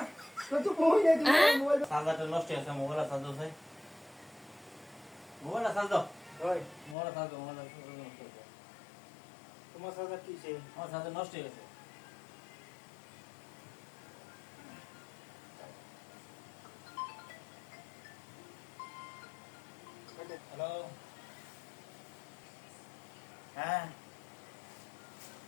তো বই নাই তুমি মোবাইল চার্জারটা নষ্ট হয়ে গেছে মোবাইল চার্জ দাও ভাই মোবাইল চার্জ দাও ওই মোবাইল চার্জ দাও মোবাইল নষ্ট হয়ে গেছে তোমার সাথে কি সে আমার চার্জার নষ্ট হয়ে গেছে হ্যালো হ্যাঁ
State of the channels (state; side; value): drops out; right; at 7.0 s